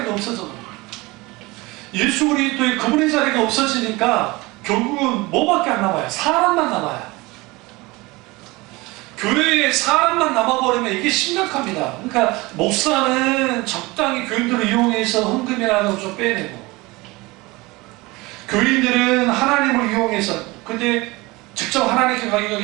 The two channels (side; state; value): left; quieter; 22.6 dB